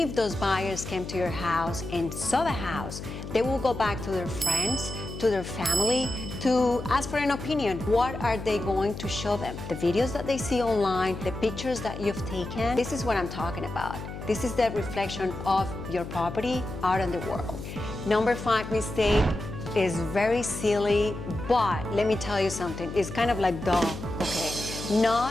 those buyers came to your house and saw the house, they will go back to their friends, to their family, to ask for an opinion. What are they going to show them? The videos that they see online, the pictures that you've taken. This is what I'm talking about. This is the reflection of your property out in the world. Number 5 mistake is very silly, but let me tell you something. It's kind of like duh, okay?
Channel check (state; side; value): noise; left; hum, 9 dB below the sound